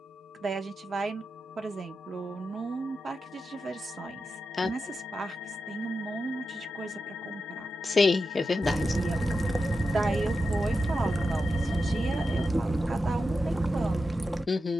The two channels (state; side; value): normal; both; correlation 0.89